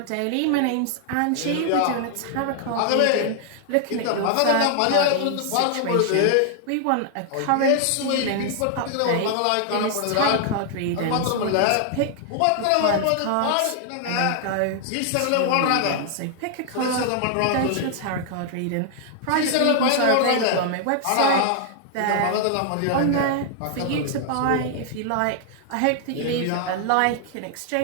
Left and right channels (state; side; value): different; both; correlation 0.00